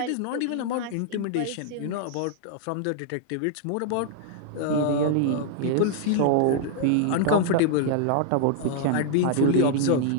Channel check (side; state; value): both; different; correlation 0.00